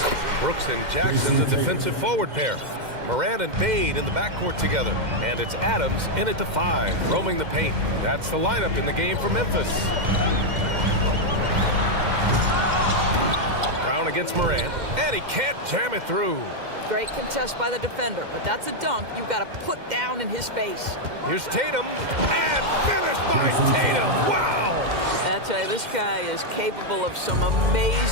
Brooks and Jackson, the defensive forward pair. Morant and Bane in the backcourt together. And it's Adams in at the 5, roaming the paint. That's the lineup in the game for Memphis. Brown against Morant, and he can't jam it through. Great contest by the defender, but that's a dunk you got to put down in his face. Here's Tatum, and finished by Tatum. Wow! I tell you, this guy is capable of some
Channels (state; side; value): late; left; 2.1 ms